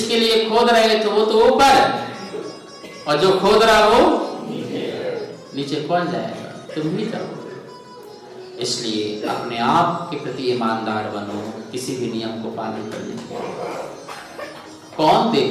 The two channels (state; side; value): identical; both; correlation 1.00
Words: लिए खोद रहे थे वो तो ऊपर, और जो खोद रहा वो नीचे कौन जाएगा? तुम ही जाओगे। इसलिए अपने आप के प्रति ईमानदार बनो, किसी भी नियम को पालन करने के। कौन